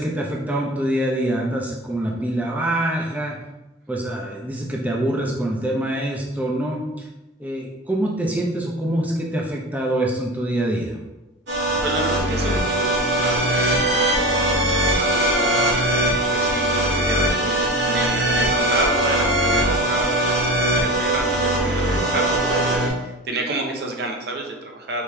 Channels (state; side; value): normal; both; correlation 0.32